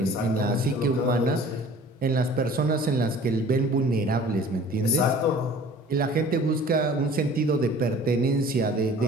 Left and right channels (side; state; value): both; normal; correlation 0.47